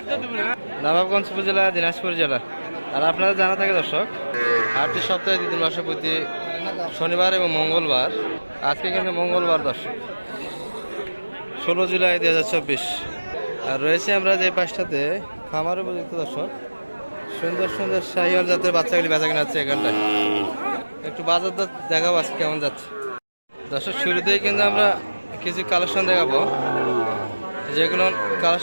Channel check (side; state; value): both; inverted; correlation -1.00